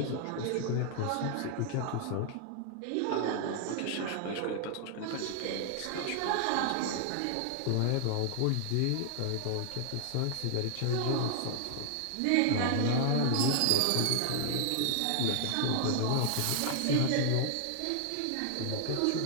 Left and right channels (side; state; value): both; different; correlation 0.00